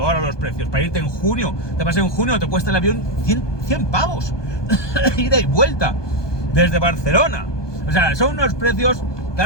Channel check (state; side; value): late; right; 1.2 ms